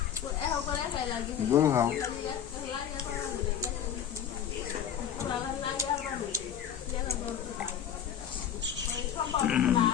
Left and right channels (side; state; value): right; quieter; 9.1 dB